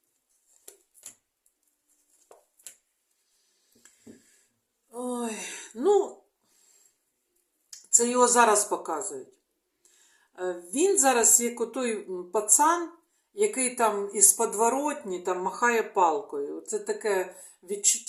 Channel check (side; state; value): both; identical; correlation 1.00